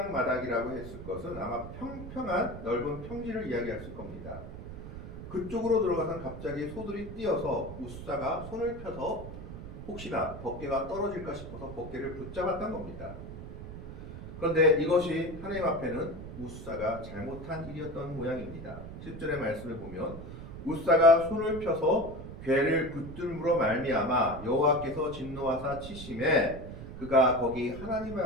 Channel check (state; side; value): noise; right; rumble, 11 dB below the sound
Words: 했을 것은 아마 평평한 넓은 평지를 이야기했을 겁니다. 그쪽으로 들어가서 갑자기 소들이 뛰어서 우사가 손을 펴서 혹시나 법궤가 떨어질까 싶어서 법궤를 붙잡았던 겁니다. 그런데 이것이 하나님 앞에는 우사가 잘못한 일이었던 모양입니다. 10절의 말씀을 보면 우사가 손을 펴서 궤를 붙들므로 말미암아 여호와께서 진노하사 치심에 그가 거기 하나님